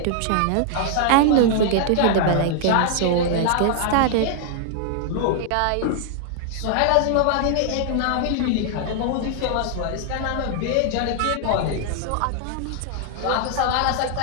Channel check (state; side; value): different; both; correlation 0.00